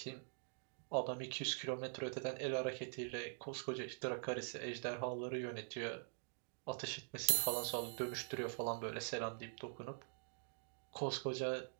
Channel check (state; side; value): silent; left; digital silence